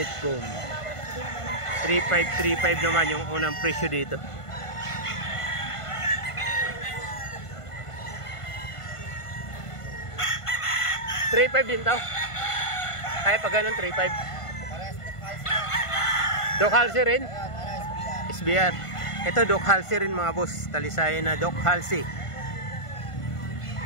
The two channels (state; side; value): late; right; 1.5 ms